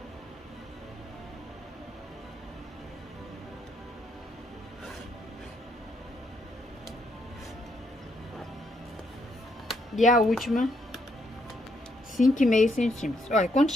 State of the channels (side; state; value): both; normal; correlation 0.75